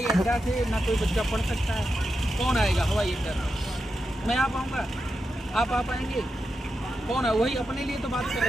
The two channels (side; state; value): both; normal; correlation 0.88